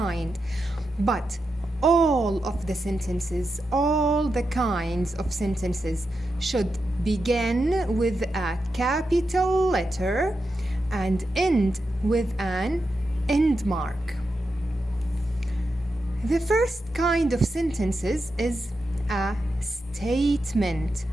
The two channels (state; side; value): normal; both; correlation 0.88